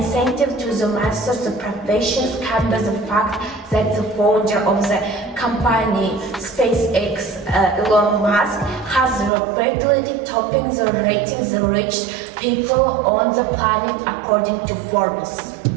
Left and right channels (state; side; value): drops out; left; at 9.3 s